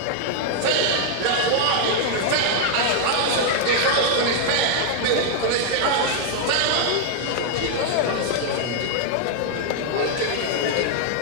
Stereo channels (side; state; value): both; different; correlation 0.00